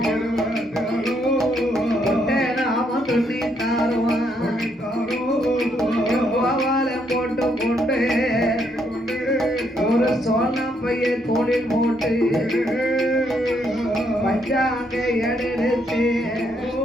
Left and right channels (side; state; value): both; normal; correlation 0.74